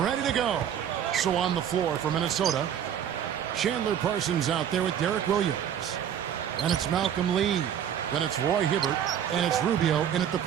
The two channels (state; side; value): quieter; left; 9.3 dB